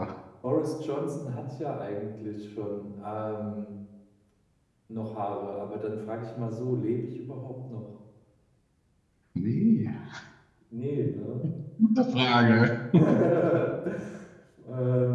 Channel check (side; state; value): both; identical; correlation 1.00